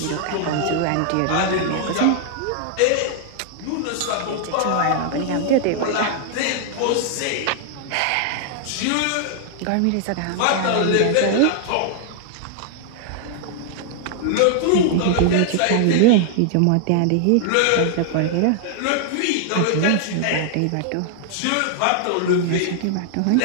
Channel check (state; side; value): different; both; correlation 0.00